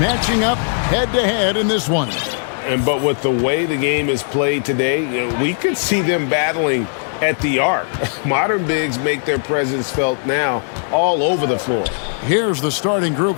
up head-to-head in this one. But with the way the game is played today, we could see them battling at the arc. Modern bigs make their presence felt now all over the floor. Here's the starting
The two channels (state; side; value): silent; right; 63 dB below the other